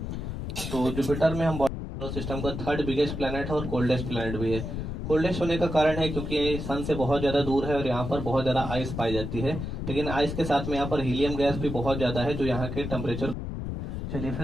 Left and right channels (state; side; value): noise; left; rumble, 5 dB below the sound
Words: तो जुपिटर में हम सिस्टम का थर्ड बिगेस्ट प्लैनेट है और कोल्डेस्ट प्लैनेट भी है। कोल्डेस्ट होने का कारण है क्योंकि सन से बहुत ज्यादा दूर है और यहाँ पर बहुत ज्यादा आइस पाई जाती है, लेकिन आइस के साथ में यहाँ पर हीलियम गैस भी बहुत ज्यादा है जो यहाँ के टेम्परेचर। चलिए